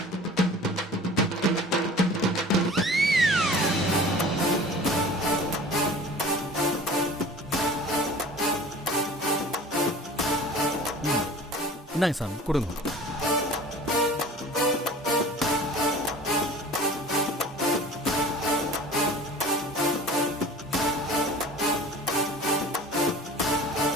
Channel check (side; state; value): both; normal; correlation 0.42